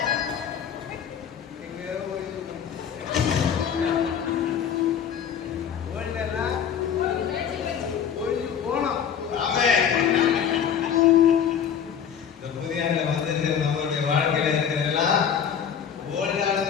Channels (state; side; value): quieter; right; 8.1 dB